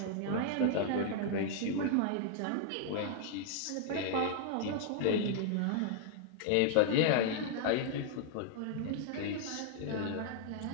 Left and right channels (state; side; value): different; both; correlation -0.01